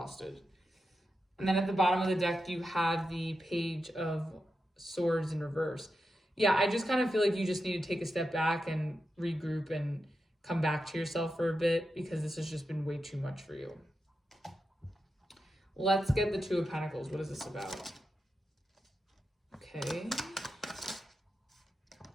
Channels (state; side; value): normal; both; correlation 0.89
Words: And then at the bottom of the deck, you have the Page of Swords in reverse. Yeah, I just kind of feel like you just need to take a step back and regroup and come back to yourself for a bit, because this has just been way too much for you. Let's get the Two of Pentacles. What is this about? Okay.